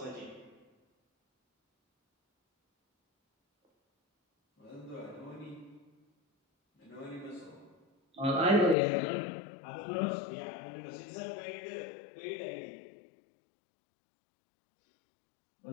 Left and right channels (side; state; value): right; drops out; at 8.8 s